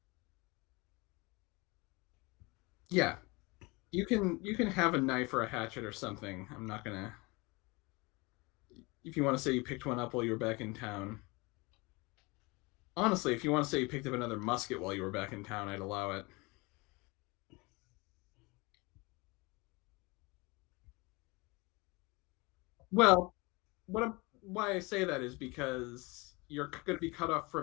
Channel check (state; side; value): quieter; right; 25.6 dB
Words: Yeah, you can have a knife or a hatchet or something. I'm not gonna. If you want to say you picked one up while you were back in town, honestly, if you want to say you picked up another musket while you were back in town, I'd allow it. Well, why I say that is because you're going to be cut off